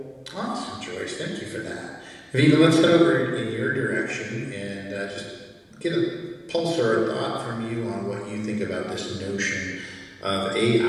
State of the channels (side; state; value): both; identical; correlation 1.00